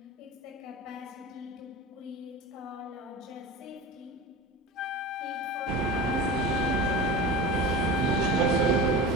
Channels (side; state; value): both; normal; correlation 0.31